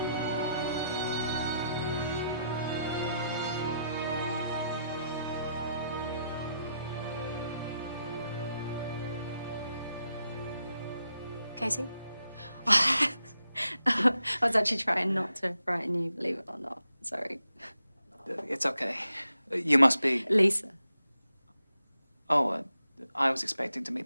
Casey? I was actually trying not to frighten you, believe it or not. Sorry. It's okay. You must be... Lisa. Oh, I was expecting to meet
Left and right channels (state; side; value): inverted; both; correlation -0.82